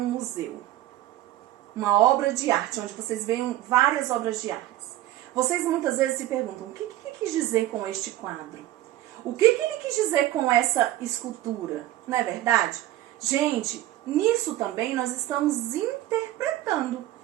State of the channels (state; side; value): quieter; left; 14.6 dB